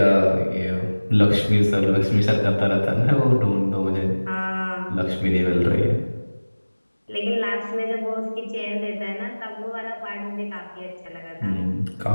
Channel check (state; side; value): inverted; both; correlation -1.00